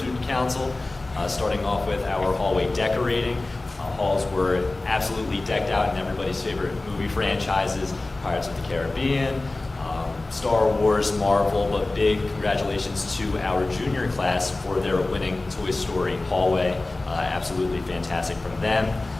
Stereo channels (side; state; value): right; quieter; 3.0 dB